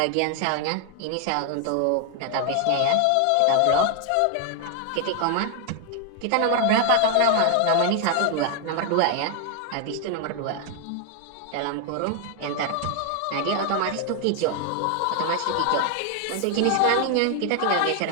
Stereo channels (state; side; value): different; both; correlation 0.00